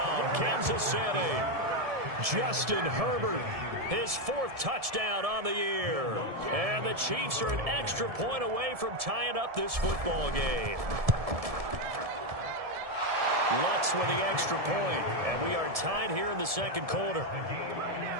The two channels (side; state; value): left; late; 1.7 ms